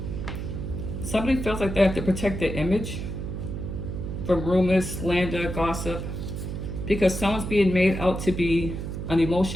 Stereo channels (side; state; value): right; noise; hum, 5 dB below the sound